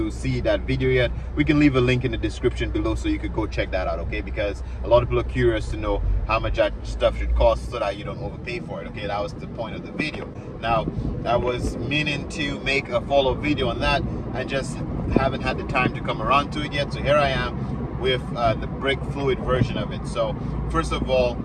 see that video yet, we can leave a link in the description below so you could go check that out, okay? Because a lot of people are curious to know how much that stuff should cost so that you don't overpay for it, okay? That was the point of the video. Now, I was meaning to make a follow-up video on that and just haven't had the time to come around to it yet. So here I am with the brake fluid version of it. So first of all,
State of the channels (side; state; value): both; identical; correlation 1.00